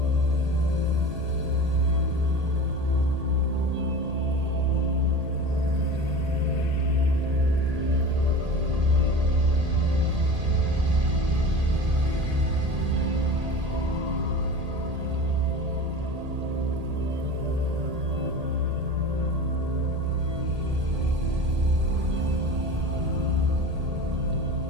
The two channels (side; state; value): left; late; 1.8 ms